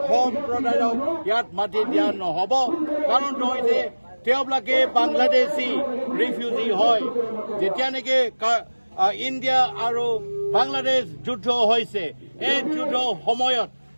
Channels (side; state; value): both; inverted; correlation -1.00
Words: সম্প্ৰদায়ক ইয়াত মাটি দিয়া নহ'ব কাৰণ নহয় তেওঁলোকে বাংলাদেশী ৰিফিউজি হয় যেতিয়া নেকি ইণ্ডিয়া আৰু বাংলাদেশ যুদ্ধ হৈছে এই যুদ্ধ সময়ত